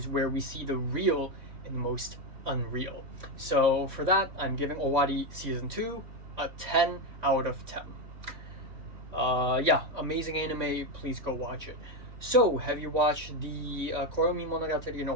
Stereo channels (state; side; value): late; left; 3.6 ms